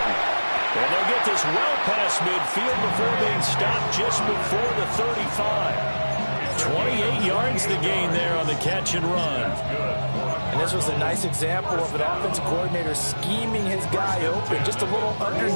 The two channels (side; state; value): both; inverted; correlation -1.00